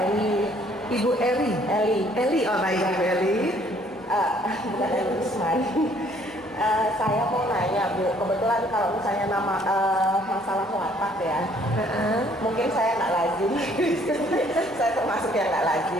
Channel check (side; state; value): left; noise; hum, 29 dB below the sound